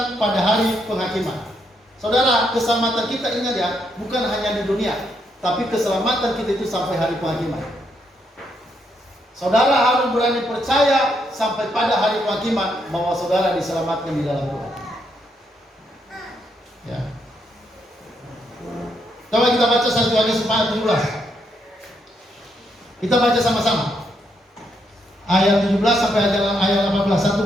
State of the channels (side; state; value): both; normal; correlation 0.77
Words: pada hari penghakiman. Saudara, keselamatan kita, ingat ya, bukan hanya di dunia, tapi keselamatan kita itu sampai hari penghakiman. Saudara harus berani percaya sampai pada hari penghakiman bahwa saudara diselamatkan di dalam Tuhan. Ya. Coba kita baca 1 Yohanes 4:17. Kita baca sama-sama. Ayat 17 sampai ayat 18, 1